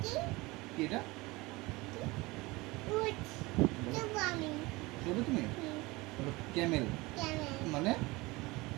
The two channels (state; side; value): quieter; left; 22.5 dB